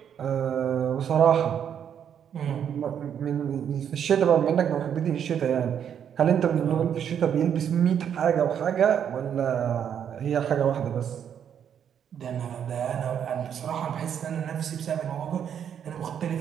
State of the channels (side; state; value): left; quieter; 8.6 dB